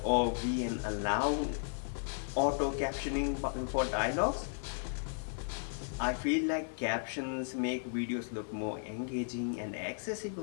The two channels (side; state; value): right; silent; digital silence